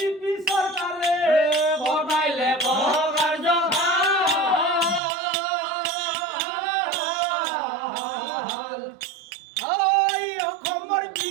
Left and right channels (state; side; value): drops out; left; at 5.0 s